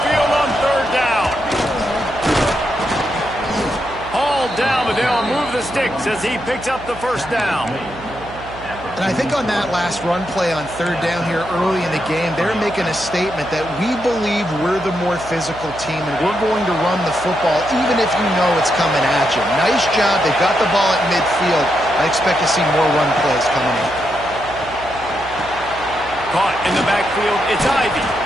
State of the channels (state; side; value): noise; right; hum, 16 dB below the sound